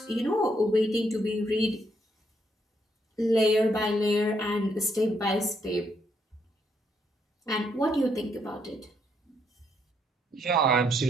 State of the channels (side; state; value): both; normal; correlation 0.74